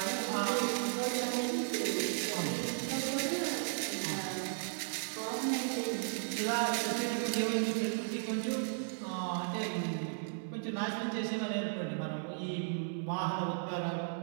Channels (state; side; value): silent; left; digital silence